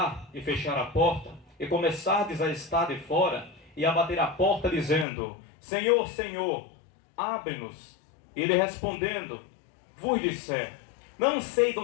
e fechar a porta, e começardes a estar de fora, e a bater a porta dizendo: Senhor, Senhor, abre-nos. E ele respondendo, vos disser: não sei de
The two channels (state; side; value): drops out; right; at 5.1 s